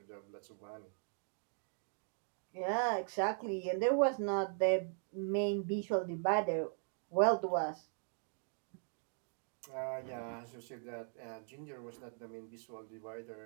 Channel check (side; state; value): left; silent; 51 dB below the other